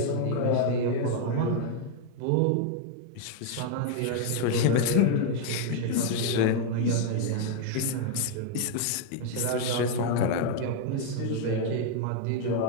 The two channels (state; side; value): different; both; correlation 0.00